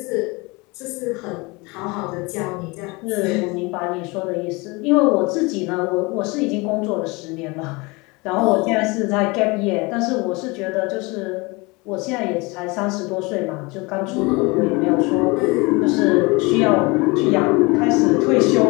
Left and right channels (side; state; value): right; quieter; 25.9 dB